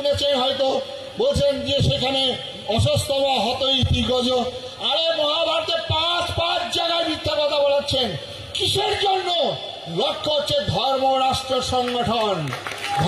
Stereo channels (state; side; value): identical; both; correlation 1.00